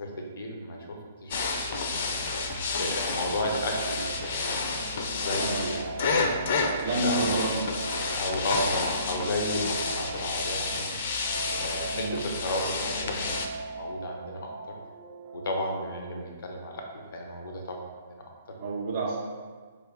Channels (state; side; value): inverted; both; correlation -0.55